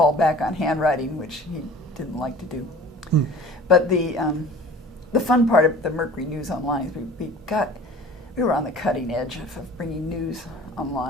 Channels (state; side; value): normal; both; correlation 0.44